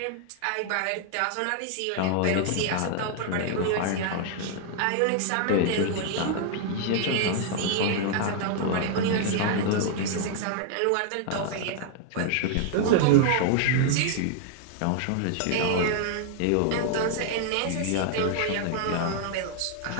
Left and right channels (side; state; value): both; different; correlation 0.00